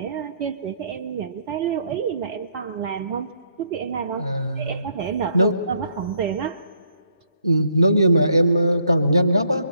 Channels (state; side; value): inverted; both; correlation -0.70